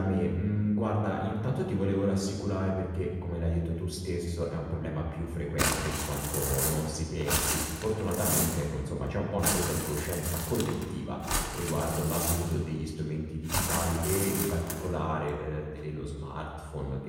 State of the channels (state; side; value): identical; both; correlation 1.00